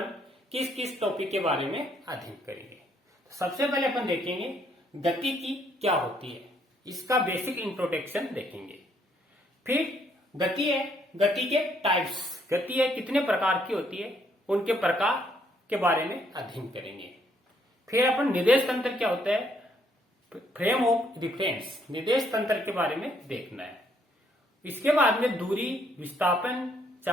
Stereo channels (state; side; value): normal; both; correlation 0.69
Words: किस किस टॉपिक के बारे में अध्ययन करेंगे। तो सबसे पहले अपन देखेंगे गति की क्या होती है, इसका बेसिक इंट्रोडक्शन देखेंगे। फिर गति है, गति के टाइप्स, गति है कितने प्रकार की होती है उनके प्रकार के बारे में अध्ययन करेंगे। फिर अपन निर्देश तंत्र क्या होता है, फ्रेम ऑफ रिफरेंस, निर्देश तंत्र के बारे में देखना है। इसके बाद में दूरी, विस्थापन,